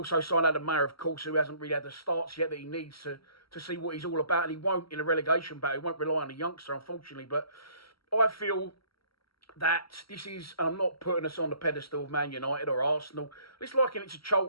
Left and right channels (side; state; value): right; late; 0.75 ms